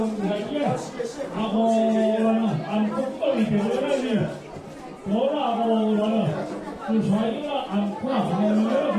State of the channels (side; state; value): both; identical; correlation 1.00